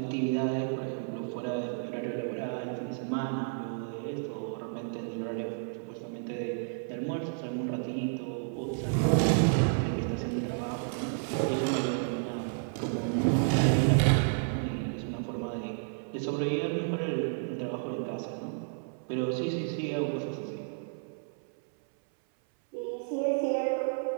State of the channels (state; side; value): silent; left; 57 dB below the other